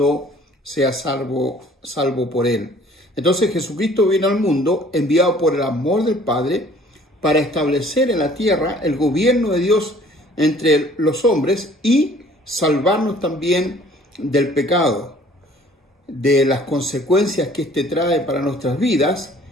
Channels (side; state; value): both; normal; correlation 0.54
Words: sea salvo por él. Entonces Jesucristo vino al mundo enviado por el amor del Padre para establecer en la tierra el gobierno de Dios entre los hombres y salvarnos también del pecado, de las consecuencias que éste trae para nuestras vidas